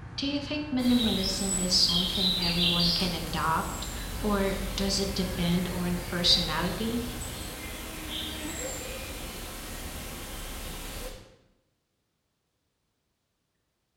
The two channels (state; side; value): identical; both; correlation 1.00